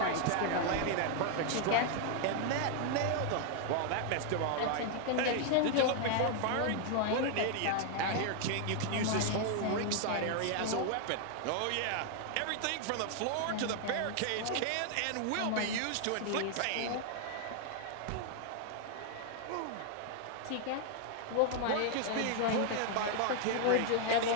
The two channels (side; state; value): both; different; correlation 0.00